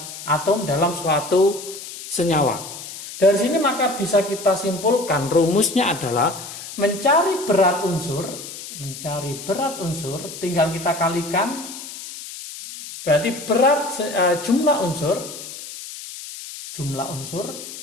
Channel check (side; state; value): left; noise; hiss, 12 dB below the sound